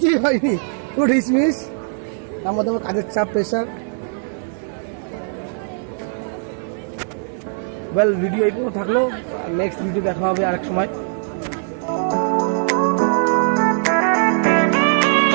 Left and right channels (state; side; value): silent; left; digital silence